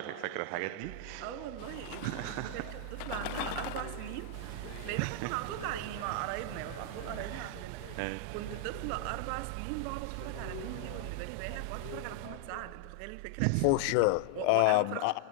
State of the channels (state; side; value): different; both; correlation 0.00